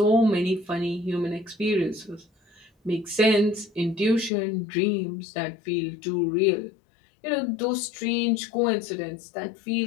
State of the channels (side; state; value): right; drops out; at 4.3 s